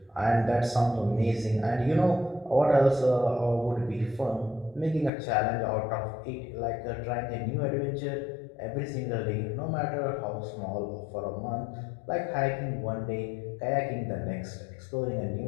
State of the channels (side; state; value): right; drops out; at 5.1 s